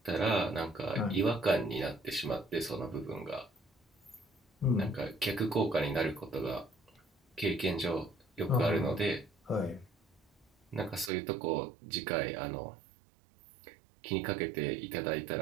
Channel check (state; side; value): drops out; left; at 11.1 s